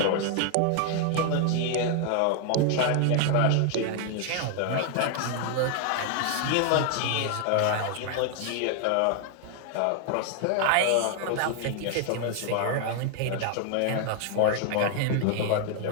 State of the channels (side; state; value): both; different; correlation 0.00